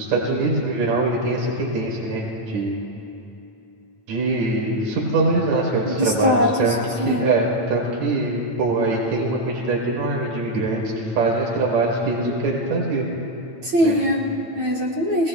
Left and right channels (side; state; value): left; late; 8.9 ms